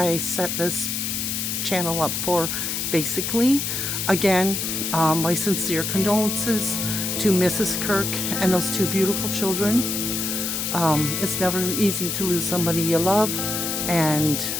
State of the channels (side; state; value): left; noise; hiss, 2 dB below the sound